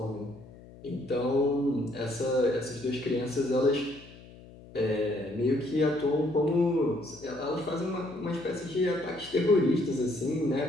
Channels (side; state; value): left; noise; hum, 20 dB below the sound